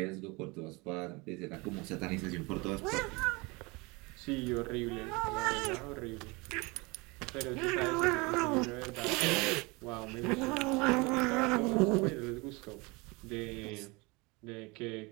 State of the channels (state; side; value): quieter; left; 26.3 dB